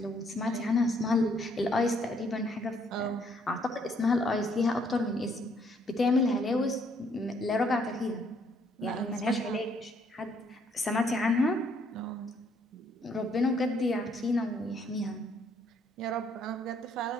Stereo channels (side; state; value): both; normal; correlation 0.68